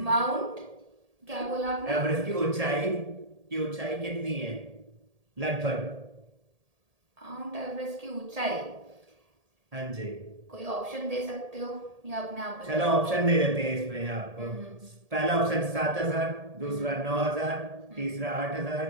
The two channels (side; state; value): left; late; 1.8 ms